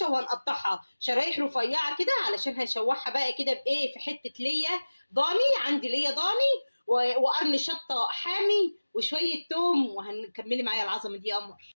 وهنقطعها شرايح رفيعه كده علشان هنشوحها بقى كده بايه، في حته ليا ضاني، عندي ليا ضاني وقرن شطه حامي وشويه توم، وهنكملي معايا العظمه دي يا قمر.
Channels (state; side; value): inverted; both; correlation -1.00